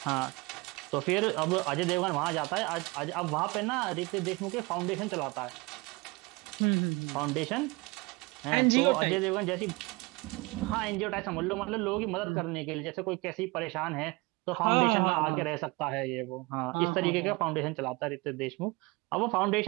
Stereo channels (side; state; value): left; quieter; 25.0 dB